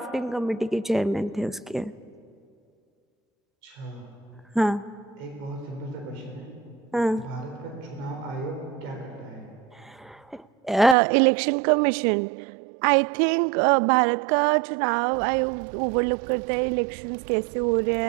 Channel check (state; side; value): drops out; left; at 11.0 s